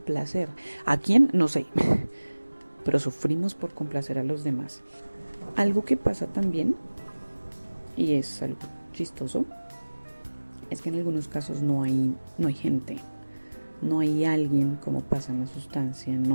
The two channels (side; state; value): both; inverted; correlation -1.00